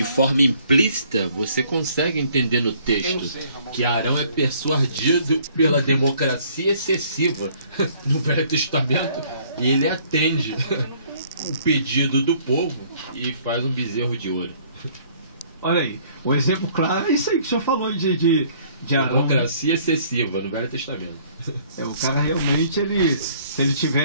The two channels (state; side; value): inverted; both; correlation -0.59